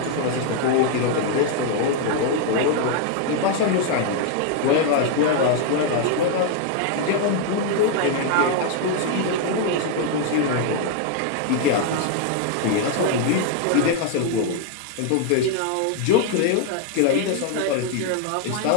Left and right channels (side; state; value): both; different; correlation 0.00